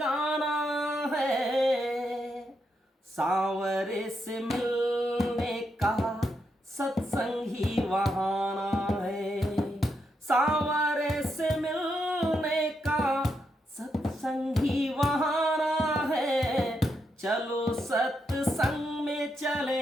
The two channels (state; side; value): normal; both; correlation 0.81